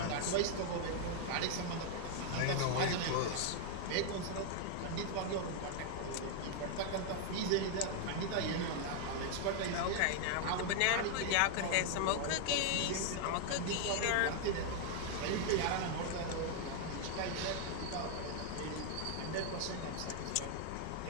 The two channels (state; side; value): different; both; correlation 0.00